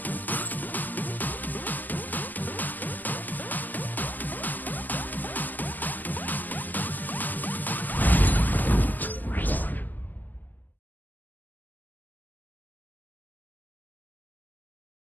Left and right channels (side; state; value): right; late; 0.085 ms